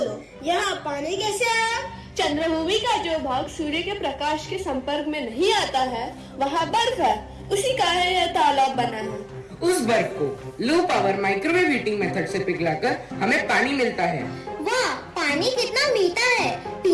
यहाँ पानी कैसे आया? चंद्रभूमि का जो भाग सूर्य के प्रकाश के संपर्क में नहीं आता है, वहाँ बर्फ है, उसी का यह तालाब बना है। उस बर्फ को low power microwave heating method से पिघलाकर हमें पानी मिलता है। वाह, पानी कितना मीठा है!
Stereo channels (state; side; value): identical; both; correlation 1.00